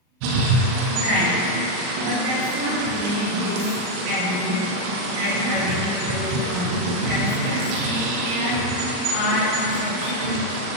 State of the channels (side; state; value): left; late; 39 ms